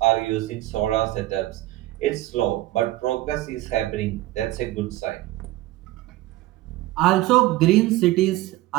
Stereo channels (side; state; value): left; quieter; 17.0 dB